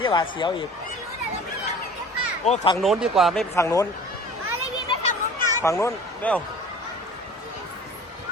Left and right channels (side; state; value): both; normal; correlation 0.44